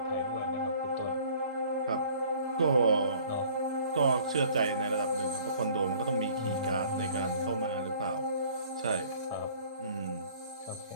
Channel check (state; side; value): inverted; both; correlation -0.53